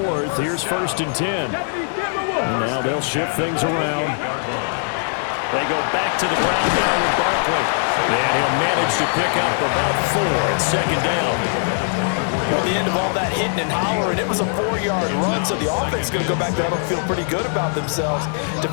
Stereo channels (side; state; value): right; silent; digital silence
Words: here's 1st and 10. And now they'll shift things around. They go back to the ground now with Barkley. And he'll manage to pick up about 4 at 2nd down. At the end of all that hitting and hollering, it was a 4-yard run, so the offense is going to go back there and feel pretty good about themselves.